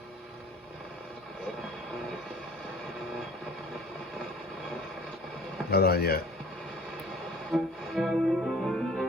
not on yet.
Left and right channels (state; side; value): normal; both; correlation 0.48